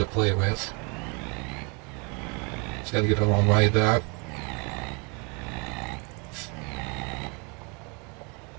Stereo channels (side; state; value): left; quieter; 32.1 dB